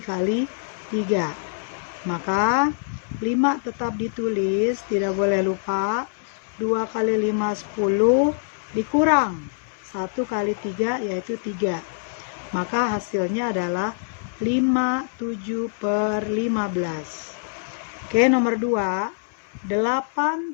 3. Maka 5 tetap ditulis, tidak boleh lupa. 2 kali 5, 10, dikurang 1 kali 3 yaitu 3. Maka hasilnya adalah 5, 7 per 15. Oke, nomor 2. 8,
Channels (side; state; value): right; silent; 62 dB below the other